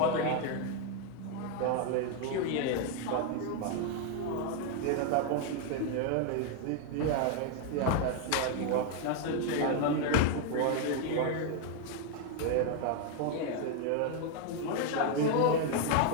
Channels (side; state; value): both; different; correlation 0.01